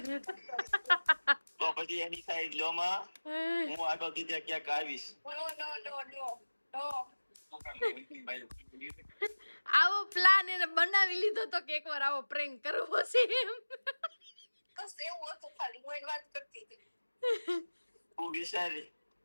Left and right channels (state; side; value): inverted; both; correlation -1.00